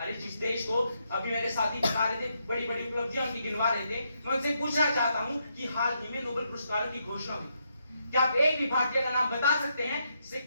जिस देश को अभी मेरे साथी बता रहे थे बड़ी बड़ी उपलब्धियां उनकी गिनवा रहे थे, मैं उनसे पूछना चाहता हूं कि हाल ही में नोबेल पुरस्कारों की घोषणा हुई, क्या आप एक भी भारतीय का नाम बता सकते हैं जिसे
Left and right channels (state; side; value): inverted; both; correlation -0.79